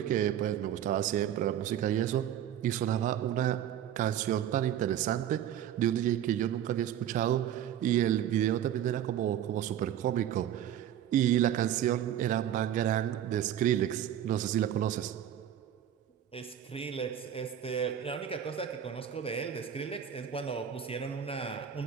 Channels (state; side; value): quieter; left; 10.5 dB